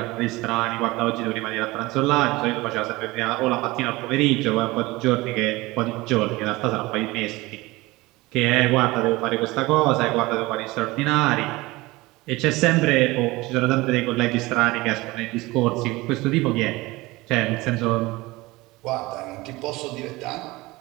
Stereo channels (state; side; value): quieter; left; 20.9 dB